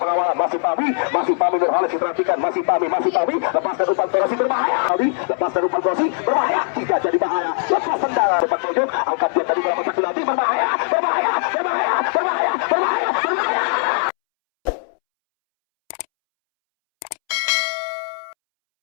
Masih Pami Nurholis diperhatikan, masih Pami, lepaskan umpan Krosi berbahaya. Aldi lepaskan umpan Krosi berbahaya, tidak jadi bahaya. Lepas tendangan sepak pojok, angkat dia tadi berapa tak penalti, berbahaya.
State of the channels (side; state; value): right; silent; 66 dB below the other